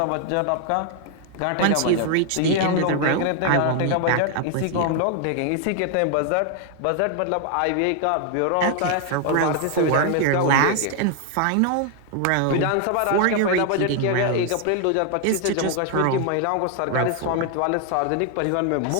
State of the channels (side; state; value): both; different; correlation 0.00